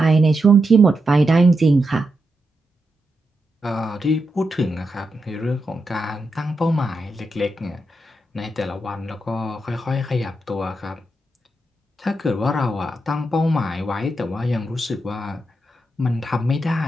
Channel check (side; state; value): both; normal; correlation 0.85